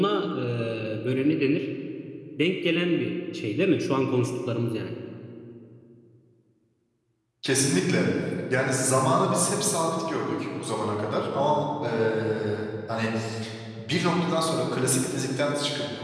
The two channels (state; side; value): identical; both; correlation 1.00